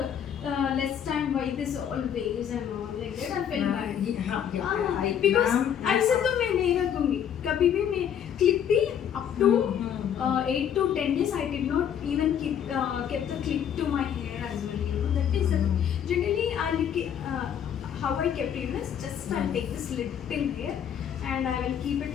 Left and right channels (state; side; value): quieter; right; 9.0 dB